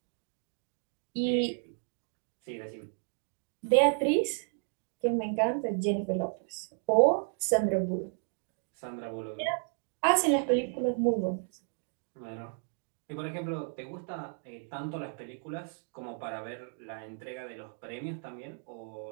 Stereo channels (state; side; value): silent; left; 56 dB below the other